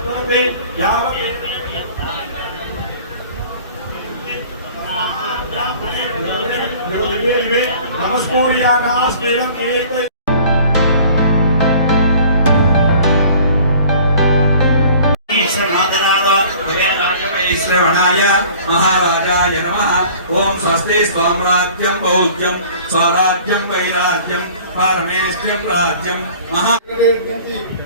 श्रवणाय महाराजाय नमः। ओम स्वस्ति स्वाम्राज्यं बौद्ध्यं स्वराज्यं वैराज्यं पारमेष्ठ्यं राज्यं महा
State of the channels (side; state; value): both; inverted; correlation -0.48